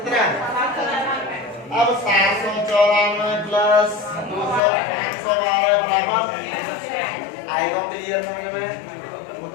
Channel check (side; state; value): right; drops out; at 4.6 s